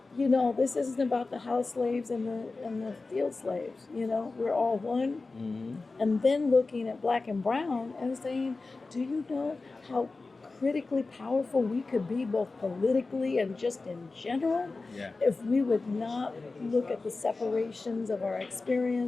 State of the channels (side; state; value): right; quieter; 3.7 dB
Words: this isn't about the house slaves and the field slaves. We're all one. And then looking at Black and brown and saying, do you know how critically powerful we could be both politically and just in general if we would not look at the separations of our